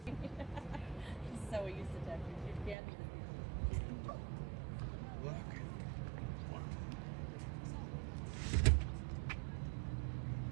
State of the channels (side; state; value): left; drops out; at 2.8 s